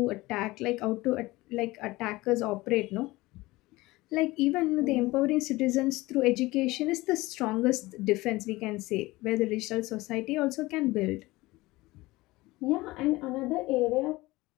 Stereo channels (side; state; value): right; quieter; 20.2 dB